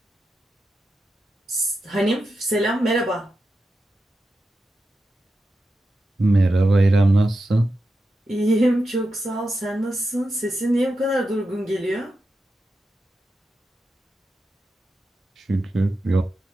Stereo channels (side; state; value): both; normal; correlation 0.89